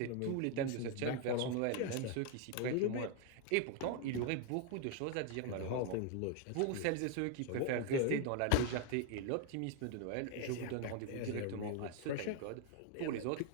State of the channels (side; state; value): both; different; correlation 0.00